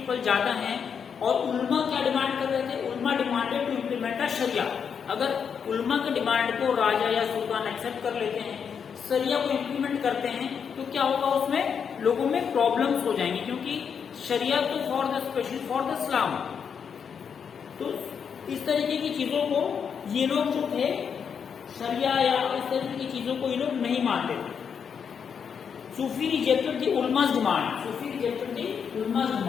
ज्यादा हैं, और उल्मा क्या डिमांड कर रहे थे? उल्मा डिमांडेड टू इम्प्लीमेंट अ शरिया। अगर उल्मा के डिमांड को राजा या सुल्तान एक्सेप्ट कर लेते हैं, शरिया को इम्प्लीमेंट करते हैं, तो क्या होगा, उसमें लोगों में प्रॉब्लम्स हो जाएंगी, क्योंकि शरिया तो for the special for the इस्लाम। तो इस तरीके की चीजों को ये लोग जो थे, शरिया या इस तरीके की चीजों को ये लोग नहीं मानते थे। सूफी रिजेक्टेड द उलमास डिमांड, सूफी रिजेक्टेड द उलमास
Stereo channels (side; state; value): right; quieter; 7.0 dB